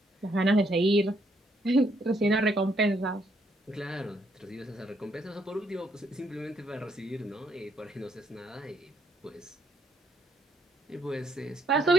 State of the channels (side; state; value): both; normal; correlation 0.72